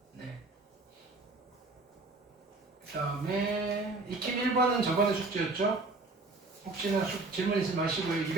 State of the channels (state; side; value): quieter; left; 3.4 dB